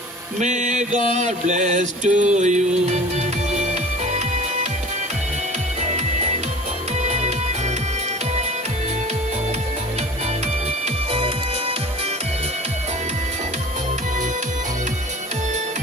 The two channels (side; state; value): both; normal; correlation 0.42